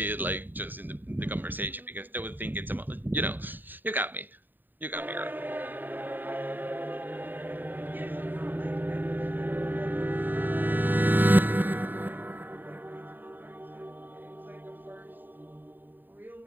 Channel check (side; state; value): left; late; 0.091 ms